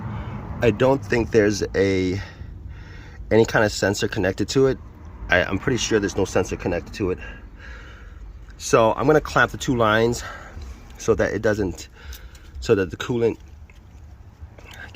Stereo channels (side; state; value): both; identical; correlation 1.00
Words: I don't think there's any kind of sensor connected to it. I'm pretty sure there's no sensor connected to it. So I'm gonna clamp the two lines so that the coolant